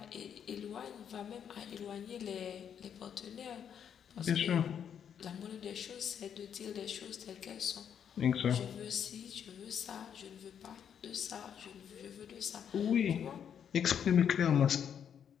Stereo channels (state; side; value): quieter; right; 8.3 dB